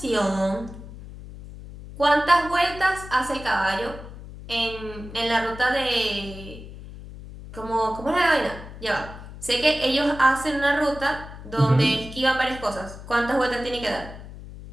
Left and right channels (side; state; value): left; noise; hum, 14 dB below the sound